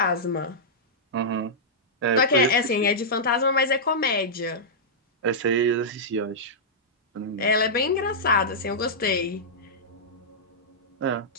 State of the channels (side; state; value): both; normal; correlation -0.11